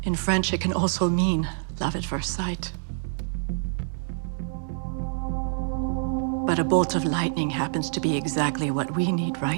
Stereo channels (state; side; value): silent; left; digital silence